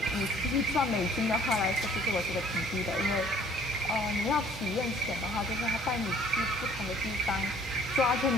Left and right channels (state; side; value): normal; both; correlation 0.56